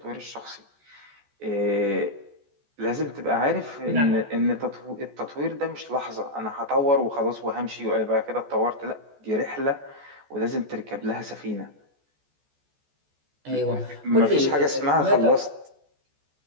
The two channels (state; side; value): late; left; 14 ms